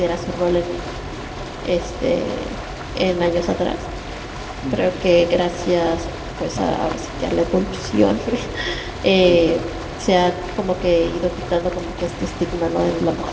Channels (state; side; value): identical; both; correlation 1.00